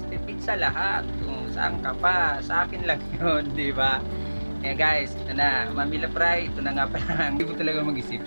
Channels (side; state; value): both; inverted; correlation -1.00